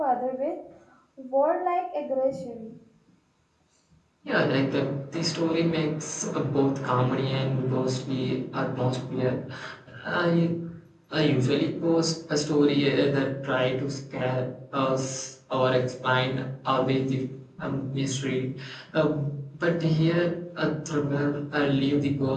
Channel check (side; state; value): both; identical; correlation 1.00